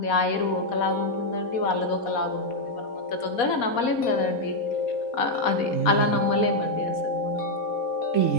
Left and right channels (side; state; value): right; late; 4.2 ms